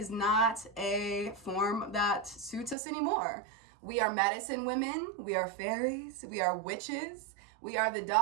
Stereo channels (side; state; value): left; drops out; at 2.8 s